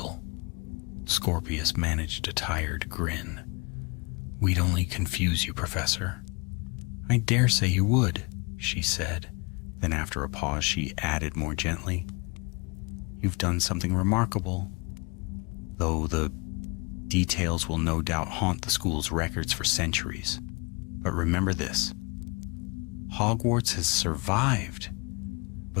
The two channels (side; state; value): right; quieter; 29.5 dB